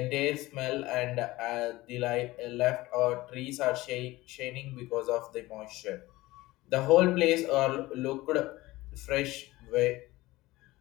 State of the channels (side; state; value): right; quieter; 18.9 dB